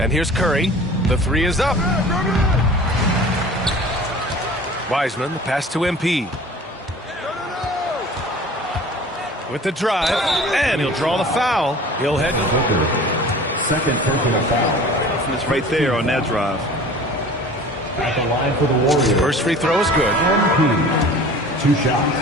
here's Curry. The 3 is up. Wiseman, the pass to MP. With the drive. And he'll draw the foul. He'll head to second personal foul. It's right there on that drive. At the line for the Warriors. First free throw is good. MP. 2 shots.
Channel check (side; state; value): both; normal; correlation 0.43